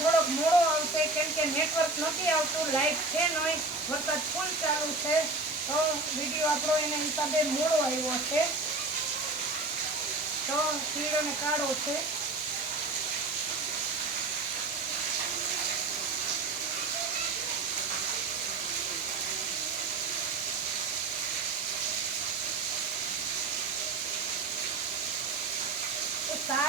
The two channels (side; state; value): left; quieter; 3.4 dB